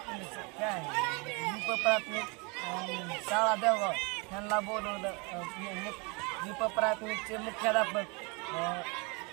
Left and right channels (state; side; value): quieter; left; 30.2 dB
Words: काय दीप प्राथमिक शाळा देवगाव यांना बोलवलं। दीप प्राथमिकचे मुख्याध्यापक